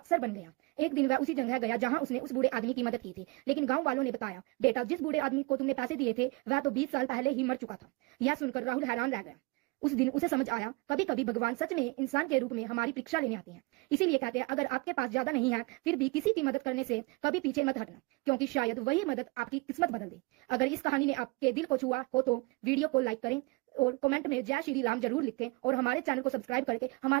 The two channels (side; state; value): left; quieter; 25.6 dB